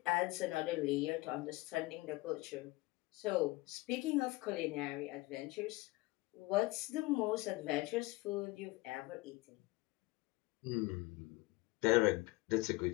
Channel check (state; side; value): quieter; right; 21.5 dB